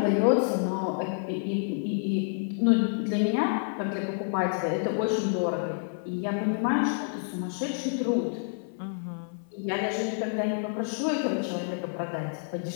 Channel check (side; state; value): right; silent; 55 dB below the other